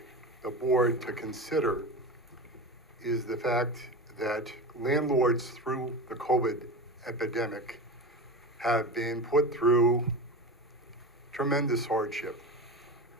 the board to consider is the fact that landlords through the COVID epidemic have been put through tremendous hardship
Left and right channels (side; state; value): both; normal; correlation 0.26